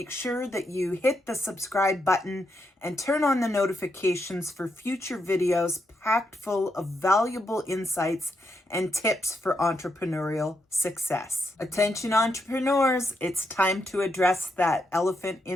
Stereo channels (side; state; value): both; normal; correlation 0.81